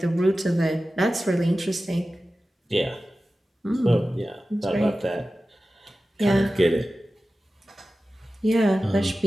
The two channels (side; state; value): both; normal; correlation 0.95